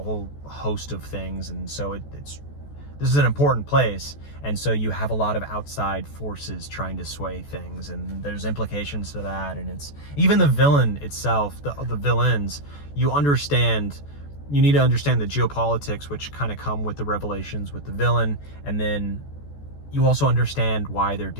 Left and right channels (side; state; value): right; late; 14 ms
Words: whole host of things. And so this is an important place, and so you have a lot of outside forces trying to sway things, and there's implications to that. And it's even the villain itself, the villains, you need to understand the geopolitics, which kind of come with the revelations with the villain, and then you also understand why they're